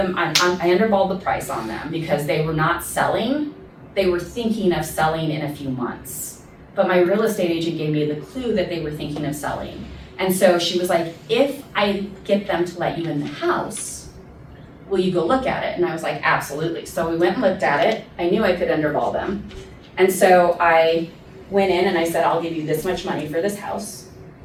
I underballed the price on them because they were not selling. They were thinking of selling in a few months. But my real estate agent gave me the clue that they were thinking of selling. And so she was like, if I get them to let you in the house, will you go look at it? And I was like, absolutely. So we went and looked at it. I knew I could underball them. And so I went in and I said, I'll give you this much money for this house.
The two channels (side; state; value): both; identical; correlation 1.00